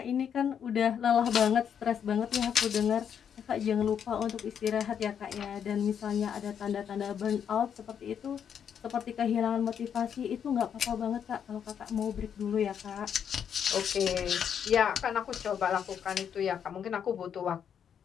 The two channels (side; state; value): right; quieter; 8.2 dB